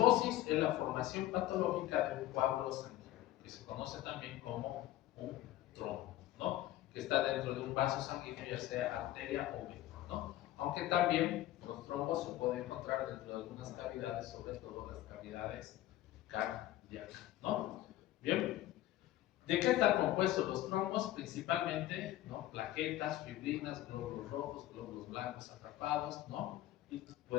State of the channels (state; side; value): quieter; right; 14.6 dB